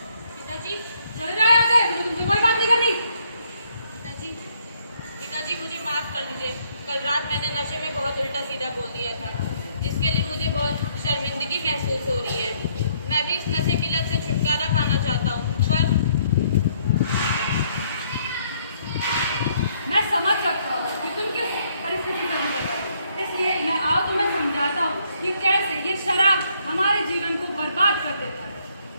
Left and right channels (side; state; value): both; inverted; correlation -0.68